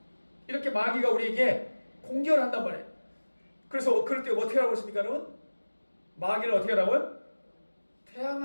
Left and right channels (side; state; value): both; inverted; correlation -1.00